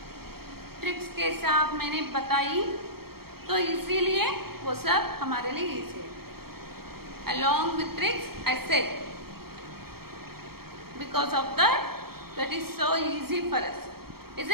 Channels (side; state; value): left; late; 0.94 ms